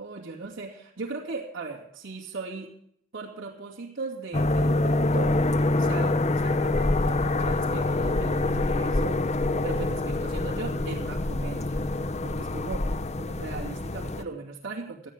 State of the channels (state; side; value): normal; both; correlation 0.61